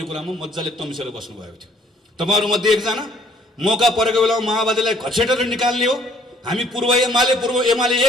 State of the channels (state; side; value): normal; both; correlation 0.60